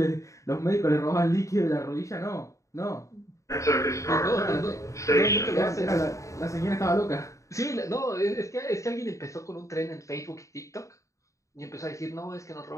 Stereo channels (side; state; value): right; late; 0.15 ms